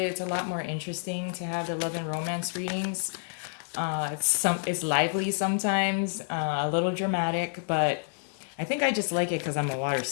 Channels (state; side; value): silent; right; digital silence